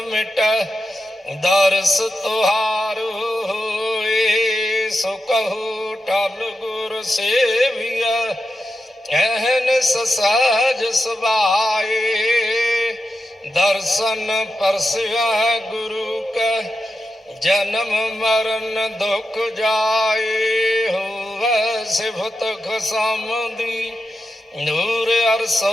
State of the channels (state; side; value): normal; both; correlation 0.89